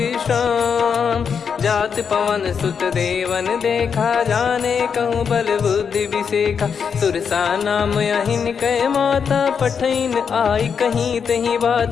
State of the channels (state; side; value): quieter; right; 6.6 dB